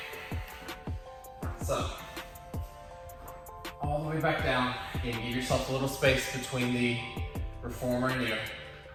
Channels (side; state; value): both; identical; correlation 1.00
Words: So, all the way back down. Again, give yourself a little space between the reformer and you.